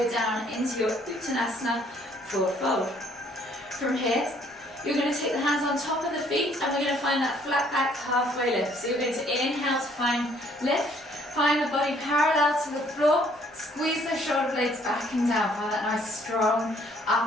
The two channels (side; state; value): both; normal; correlation 0.63